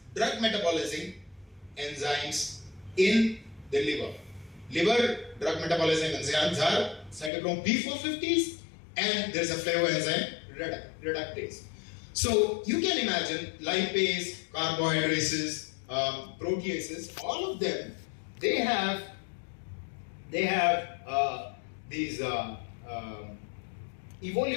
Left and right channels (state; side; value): drops out; right; at 7.3 s